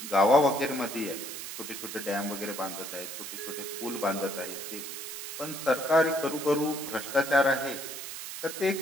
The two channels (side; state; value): right; noise; hiss, 8 dB below the sound